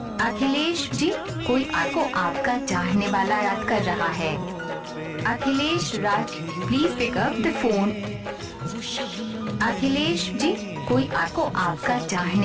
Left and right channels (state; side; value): identical; both; correlation 1.00